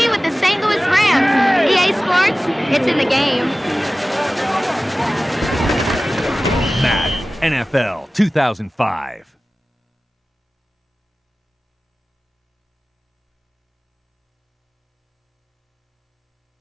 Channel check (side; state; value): both; normal; correlation 0.97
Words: with the St. Louis Rams. EA Sports, it's in the game. Madden NFL 2005.